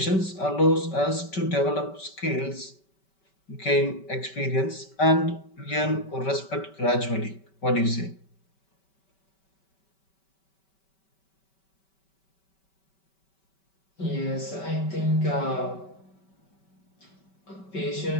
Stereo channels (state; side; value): late; right; 5.2 ms